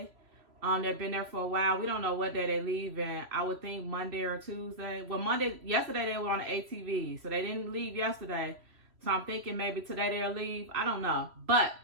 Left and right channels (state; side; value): late; left; 3.0 ms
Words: They've been there for a while. We don't know what day they leave, and I would think Monday or Tuesday. Well, yesterday they were on the ATV, so they didn't leave yesterday. So I'm thinking maybe today they'll leave. I don't know, but